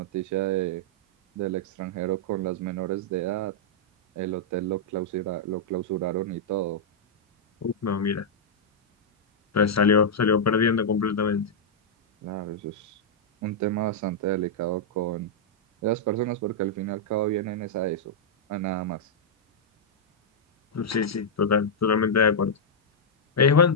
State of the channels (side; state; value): both; normal; correlation -0.07